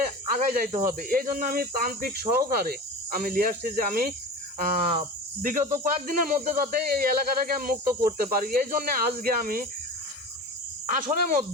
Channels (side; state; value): both; normal; correlation 0.32